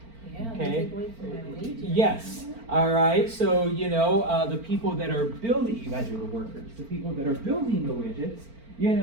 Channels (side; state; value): left; late; 4.4 ms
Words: Yeah, okay. they take away from my wages. Yes. All right. So the people that are building, you guys are the workers. The people that are building the widgets,